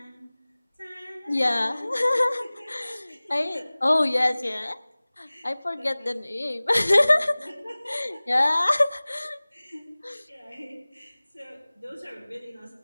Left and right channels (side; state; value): both; inverted; correlation -1.00